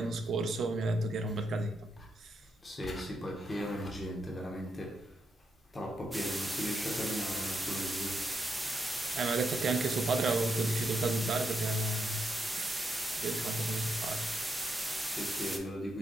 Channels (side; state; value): both; normal; correlation 0.82